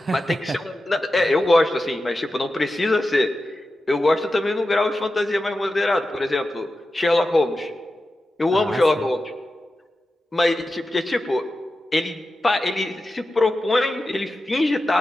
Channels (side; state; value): both; normal; correlation 0.92